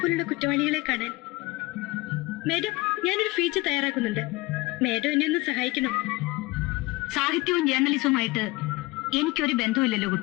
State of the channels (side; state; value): right; quieter; 22.1 dB